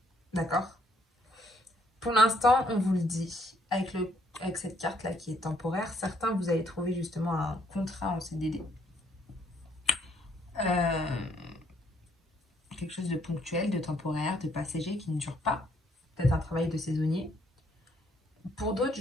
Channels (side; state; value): both; normal; correlation 0.68